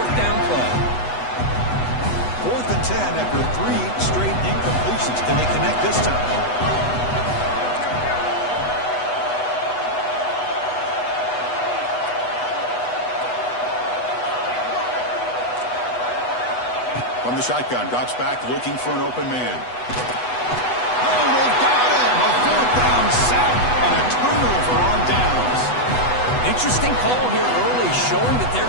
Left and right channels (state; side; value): late; right; 8.1 ms